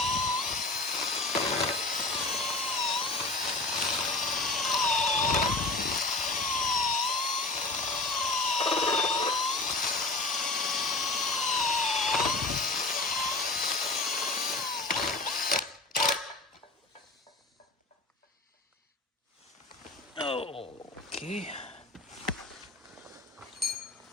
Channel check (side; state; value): right; quieter; 3.1 dB